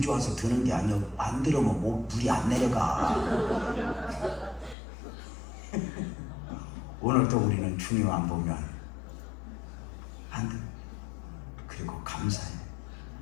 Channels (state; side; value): drops out; right; at 4.8 s